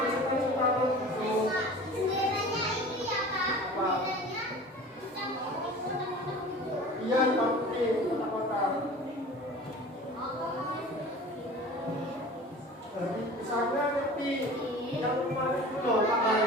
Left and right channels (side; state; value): both; normal; correlation 0.40